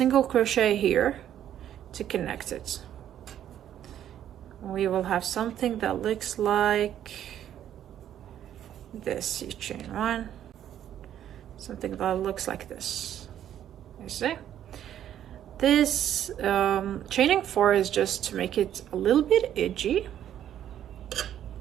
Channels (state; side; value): quieter; left; 10.7 dB